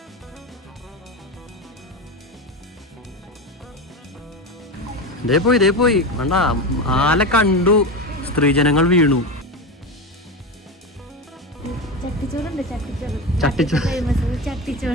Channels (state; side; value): normal; both; correlation 0.20